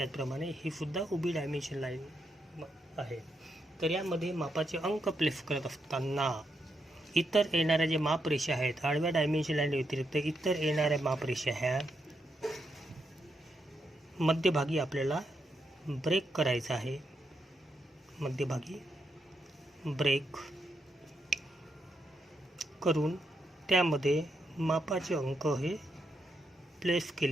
ही सुद्धा उभी डायमेन्शन लाईन आहे. तर यामध्ये मापाचे अंक प्लेस करत असताना इतर येणाऱ्या जे मापरेषा आहेत, आडव्या डायमेन्शन लाईन व्यतिरिक्त इतर येणाऱ्या मापरेषा ह्या मध्यभागी आपल्याला ब्रेक करायचा आहे. मध्यभागी ब्रेक करून त्यामध्ये मापाचे अंक हे प्लेस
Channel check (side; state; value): both; normal; correlation 0.81